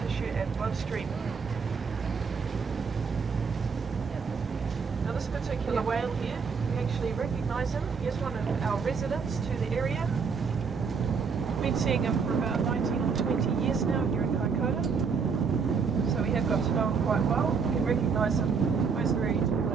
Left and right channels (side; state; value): left; quieter; 5.6 dB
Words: and bloodstream. Now this particular whale here, we actually recognise him. He is one of our residents to the area. We've been seeing him for about 19 or 20 years now here in Kaikoura. So we have got to know him quite well. We can recognise him by his very tall